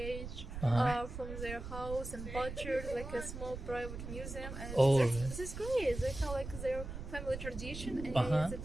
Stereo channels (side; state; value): right; noise; rumble, 8 dB below the sound